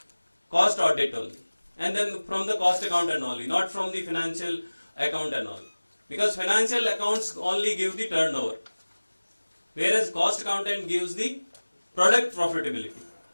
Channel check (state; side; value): inverted; both; correlation -1.00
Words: cost audit only, and then from the cost accountant only, not from the financial accountant only. because financial accounts only give the turnover, whereas cost accountant gives the product profitability.